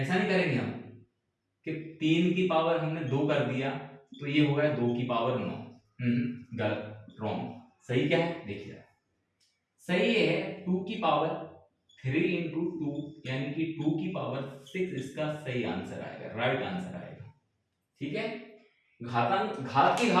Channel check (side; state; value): both; identical; correlation 1.00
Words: नहीं करेंगे हम कि 3 की पावर हमने 2 कर दिया तो ये हो गया 2 की पावर 9। गलत, रॉन्ग। सही क्या है देखिए, सही है 2 की पावर 3 इंटू 2, यानी कि 2 की पावर 6 इसका सही आंसर आएगा, राइट आंसर आएगा। ठीक है, घातांक घात की